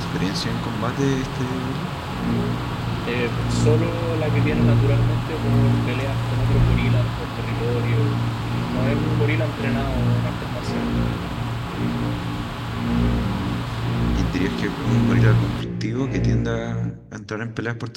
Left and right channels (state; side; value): identical; both; correlation 1.00